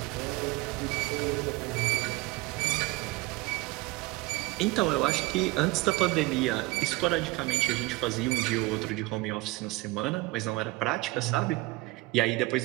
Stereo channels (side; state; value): left; quieter; 21.7 dB